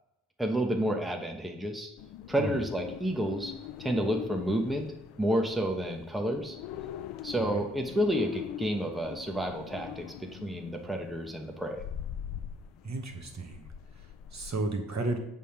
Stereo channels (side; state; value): both; normal; correlation 0.72